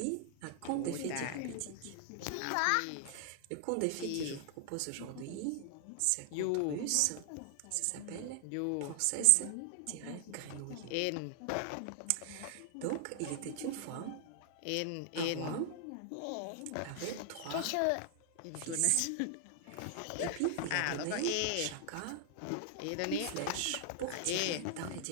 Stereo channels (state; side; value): different; both; correlation 0.00